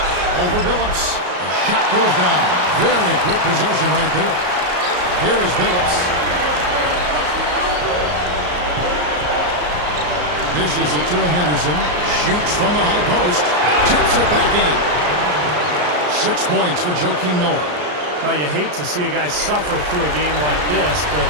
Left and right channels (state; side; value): late; left; 33 ms